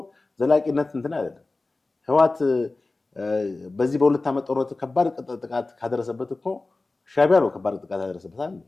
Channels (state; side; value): quieter; right; 3.3 dB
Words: ዘላቂነት እንትን አይደለም። ህወሓት በዚህ በሁለት ዓመት ጦርነት ከባድ ጥቃት ካደረሰበት እኮ ሻዕቢያ ነው ከባድ ጥቃት ያደረሰበታል።